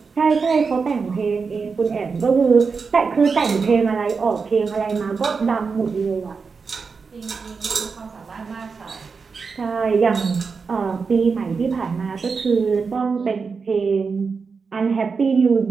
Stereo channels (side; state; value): left; quieter; 5.1 dB